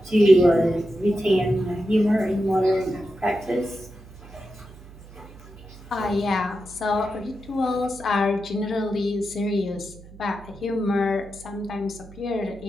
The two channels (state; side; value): noise; right; hum, 19 dB below the sound